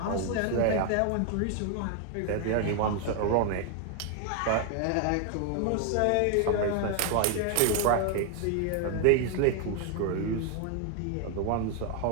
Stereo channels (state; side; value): different; both; correlation 0.01